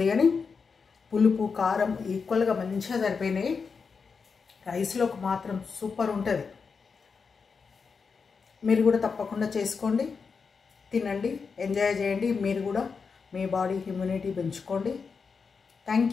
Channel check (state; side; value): quieter; right; 5.3 dB